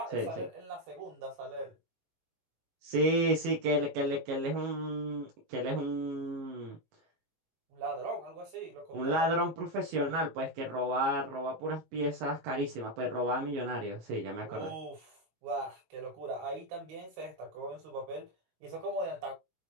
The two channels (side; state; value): left; late; 19 ms